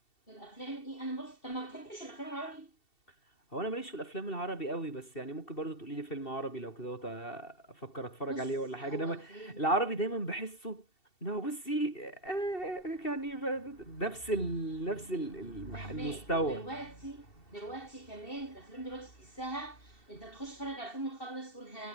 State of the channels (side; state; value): right; late; 2.7 ms